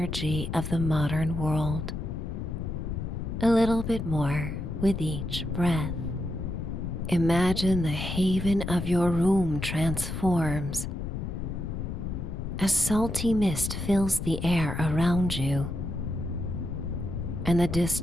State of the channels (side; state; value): left; noise; rumble, 5 dB below the sound